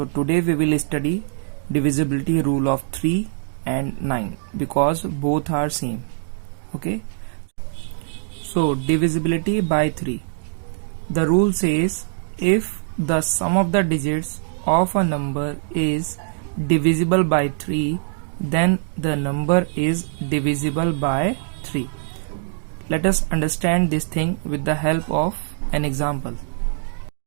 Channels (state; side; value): silent; left; digital silence